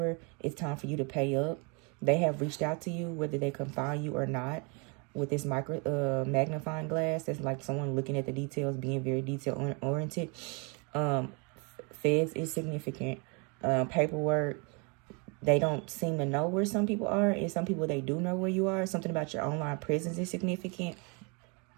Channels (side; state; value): left; quieter; 32.8 dB